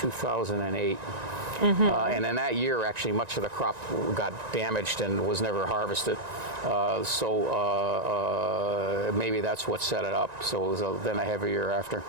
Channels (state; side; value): late; left; 1.9 ms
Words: And in that year, actually, much of the crop got damaged and was never harvested. Maybe that's what set it up. So it was then a heavy year after.